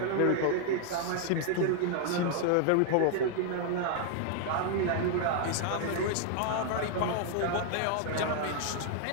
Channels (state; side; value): different; both; correlation 0.00